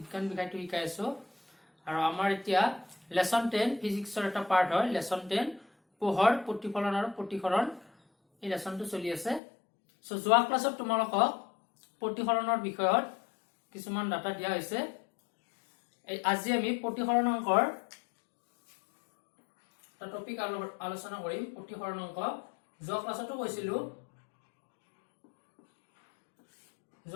বিষয়টো শিকাই আছো। আৰু আমাৰ এতিয়া লেসন 10 ফিজিক্সৰ এটা পাৰ্ট হয়, লেসন 10 পোহৰ প্ৰতিফলন আৰু প্ৰতিসৰণ। এই লেসনটো চলি আছে। সো যোৱা ক্লাছত তোমালোকক প্ৰতিসৰণৰ বিষয়ত কিছুমান ডাটা দিয়া হৈছে। আজি আমি প্ৰতিসৰণ অংকৰ টপিক আলোচনা কৰিম। প্ৰতিসৰণ অংক যোৱা ক্লাছতো কৈছিলো,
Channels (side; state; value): right; drops out; at 9.4 s